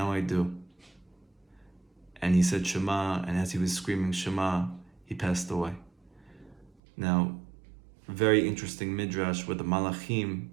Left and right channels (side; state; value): left; drops out; at 6.7 s